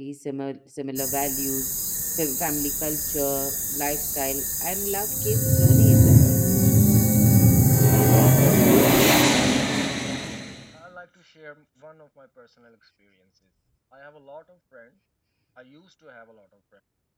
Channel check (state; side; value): identical; both; correlation 1.00